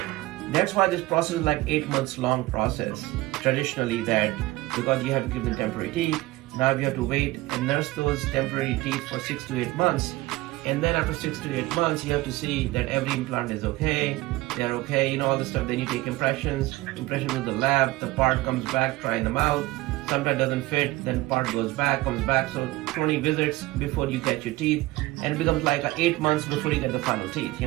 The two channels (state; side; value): quieter; left; 19.2 dB